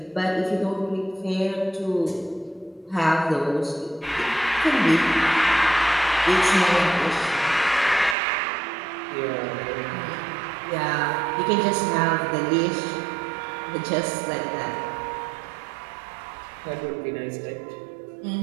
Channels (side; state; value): left; drops out; at 8.2 s